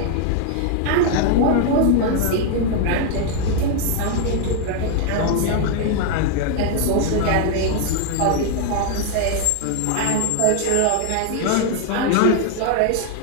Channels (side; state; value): both; different; correlation 0.00